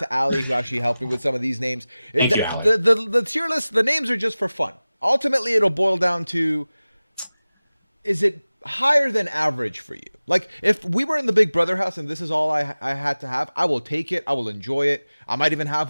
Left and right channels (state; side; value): inverted; both; correlation -0.98